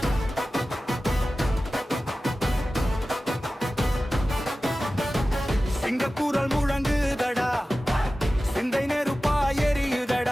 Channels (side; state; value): both; normal; correlation 0.95